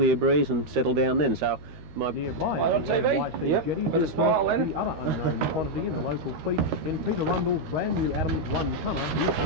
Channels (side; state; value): left; late; 13 ms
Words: breeze and settle down then. So nearby on TV? Yep. With a smile then. The other unknown quantity in the local fleet in Peter Rundle's brand new Adams 1-tonner